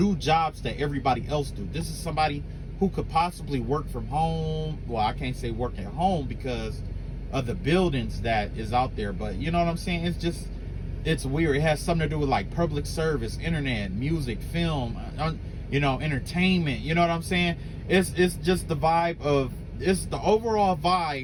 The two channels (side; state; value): both; identical; correlation 1.00